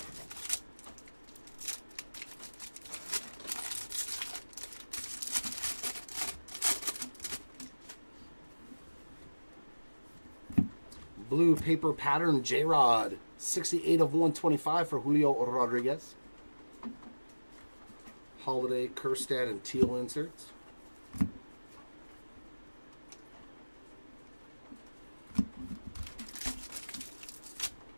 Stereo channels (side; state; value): both; inverted; correlation -1.00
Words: Blue paper pattern J-Rod, 68 of 125 for Julio Rodriguez. Holiday, Kerstad, and Teal inserts.